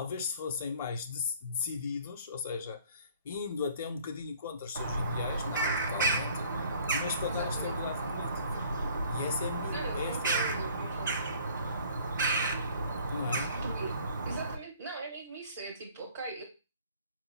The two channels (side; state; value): both; inverted; correlation -0.55